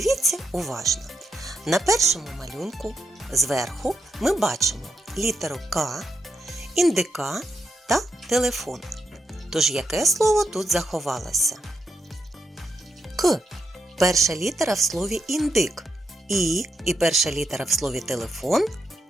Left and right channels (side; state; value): both; normal; correlation 0.82